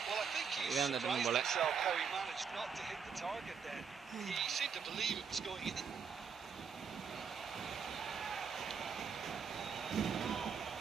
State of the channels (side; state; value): left; quieter; 6.3 dB